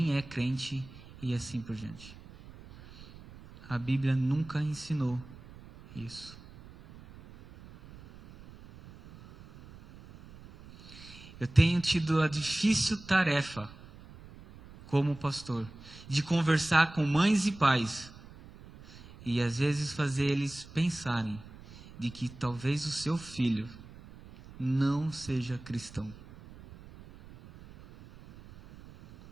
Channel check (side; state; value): right; noise; rumble, 19 dB below the sound